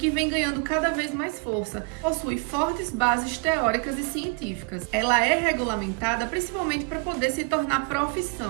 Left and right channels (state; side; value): quieter; left; 32.4 dB